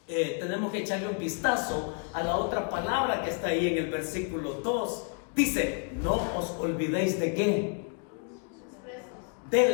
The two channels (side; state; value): right; quieter; 39.1 dB